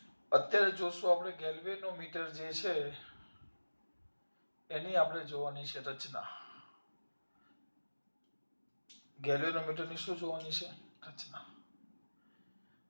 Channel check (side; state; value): both; inverted; correlation -1.00